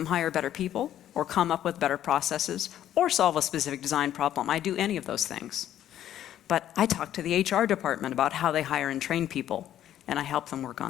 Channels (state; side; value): quieter; right; 11.5 dB